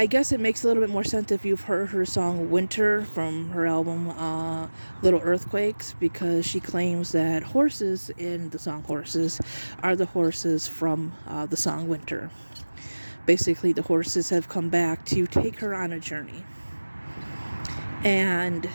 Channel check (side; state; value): both; inverted; correlation -1.00